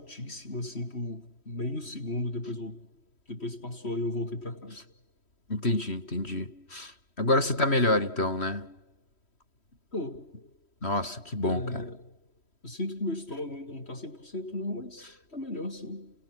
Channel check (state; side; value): late; right; 3.1 ms